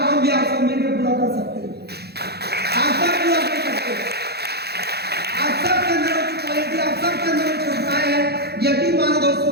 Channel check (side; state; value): left; late; 0.47 ms